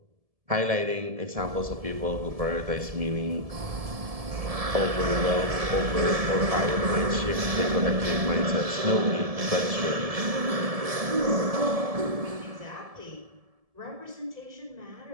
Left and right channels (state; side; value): late; left; 1.7 ms